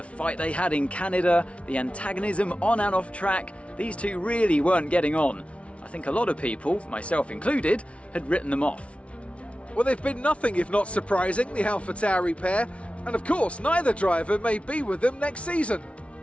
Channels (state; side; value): late; right; 0.062 ms